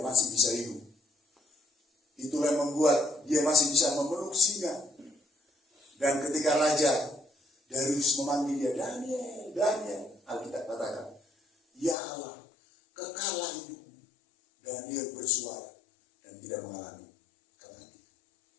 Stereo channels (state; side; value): drops out; right; at 12.0 s